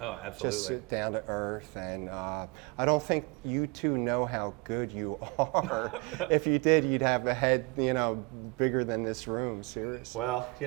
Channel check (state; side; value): quieter; left; 26.9 dB